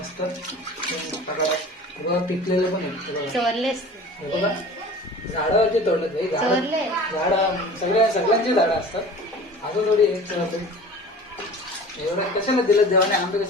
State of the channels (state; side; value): normal; both; correlation 0.40